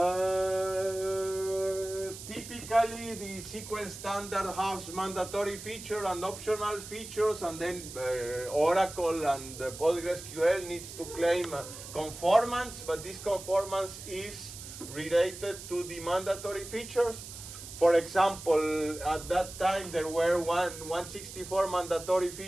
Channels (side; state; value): right; noise; hiss, 12 dB below the sound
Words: Typically, the SQL standard has mandatory features and optional features, and then Oracle and PostgreSQL needs to claim conformance, but this conformance is related to the mandatory features. For example, at that time there were 164 mandatory